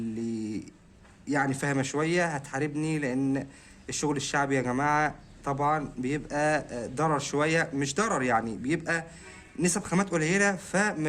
يعني فاهمة شوية هتحاربني، لأن الشغل الشعبي يا جماعة طبعا بيبقى ضرر شوية، مش ضرر يعني، بيبقى نسب خامات قليلة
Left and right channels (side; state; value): both; identical; correlation 1.00